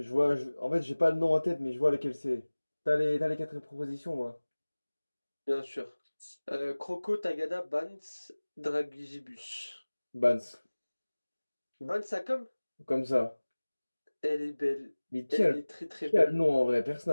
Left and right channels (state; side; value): inverted; both; correlation -1.00